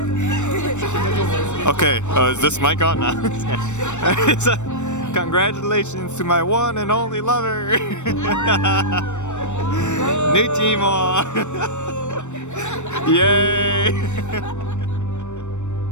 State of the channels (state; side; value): late; right; 0.84 ms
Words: Okay, is this mic on now? So, congratulations to my one and only lover. New team. Yay!